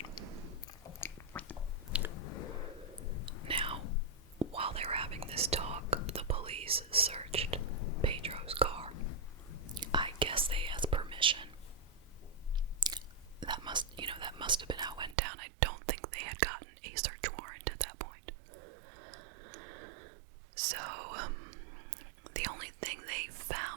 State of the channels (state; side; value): drops out; left; at 15.2 s